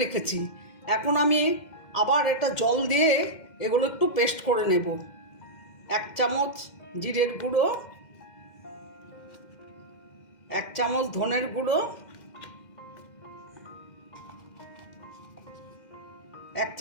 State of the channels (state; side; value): late; right; 2.1 ms